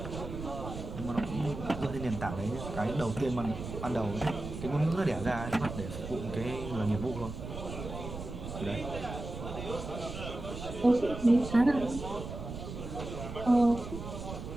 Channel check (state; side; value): noise; right; rumble, 8 dB below the sound